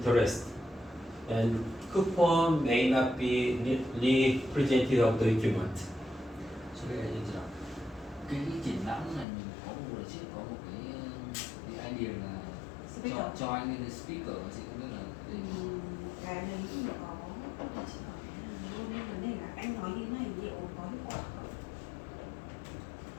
And coupon may not be representative of the equipment. So bây giờ như thế nào? Cái triển lãm này mình có một lần trước có một cái idea là cho anh lên cái speaker, chị không biết là cái đấy thì có chỉ hỏi luôn nên vấn đề là anh nói như này liệu có hiệu quả không?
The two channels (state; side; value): drops out; right; at 9.2 s